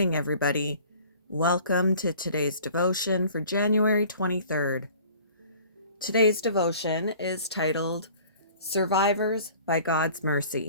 everybody. Welcome to today's devotion for January 23rd. Today's devotion is titled Survivors by God's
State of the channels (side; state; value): both; inverted; correlation -0.49